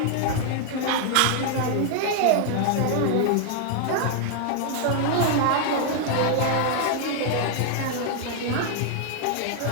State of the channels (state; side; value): different; both; correlation 0.00